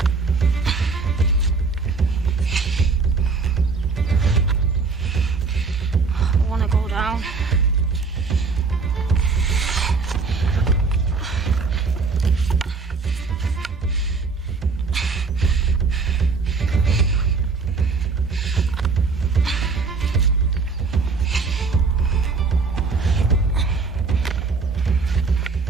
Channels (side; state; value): left; quieter; 4.5 dB